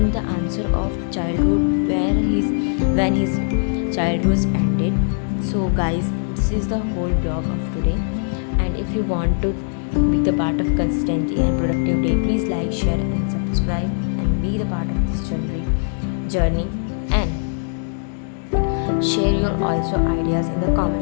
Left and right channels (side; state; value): right; silent; digital silence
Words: the answer of childhood when his childhood ended. So guys, this is the whole blog of today, and if you want to be the part of consistency and productive day, please like, share and subscribe and be the part of this journey, and share your also ideas in the